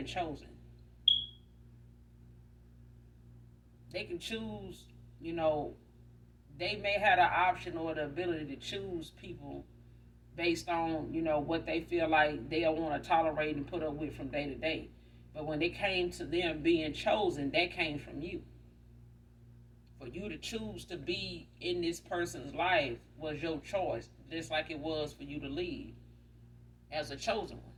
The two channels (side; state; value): both; identical; correlation 1.00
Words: chosen. They can choose, they may have the option or the ability to choose people based on, what they feel like they'll want to tolerate and put up with from day to day. But when it came to them being chosen, that came from you. For you to choose to be in this person's life was your choice, just like it was for you to leave as a chosen